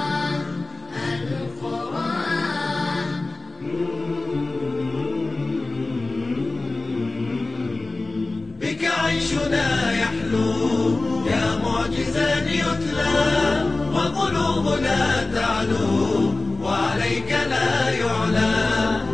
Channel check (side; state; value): right; quieter; 3.1 dB